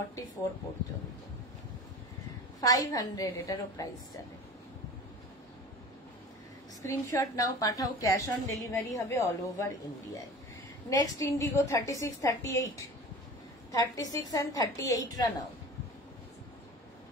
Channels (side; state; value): both; normal; correlation 0.38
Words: পর্যন্ত 500 এটারও প্রাইস যাবে। স্ক্রিনশট নাও পাঠাও, ক্যাশ অন ডেলিভারি হবে অল ওভার ইন্ডিয়ায়। নেক্সট ইন্ডিগো 36, 38 36 and 38 নাও।